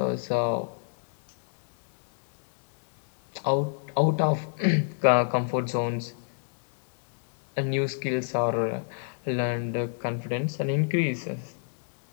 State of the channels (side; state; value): right; silent; digital silence